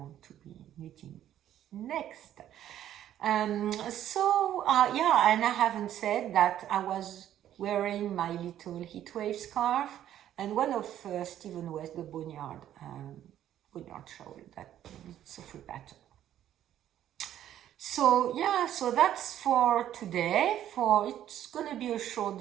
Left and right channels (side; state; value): left; quieter; 11.5 dB